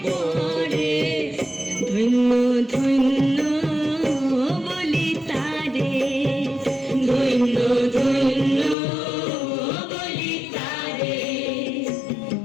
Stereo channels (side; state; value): right; drops out; at 8.8 s